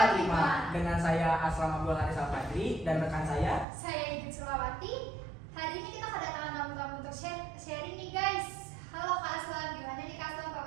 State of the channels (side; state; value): left; drops out; at 3.7 s